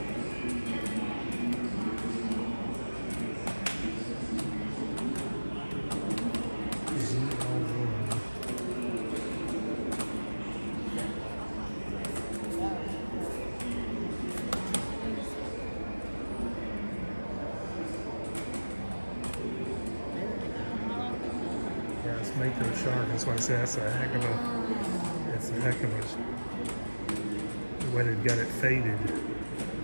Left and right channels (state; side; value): inverted; both; correlation -1.00